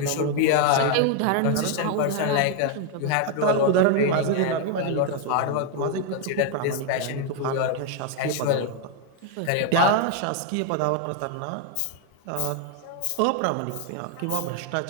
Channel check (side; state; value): both; different; correlation 0.01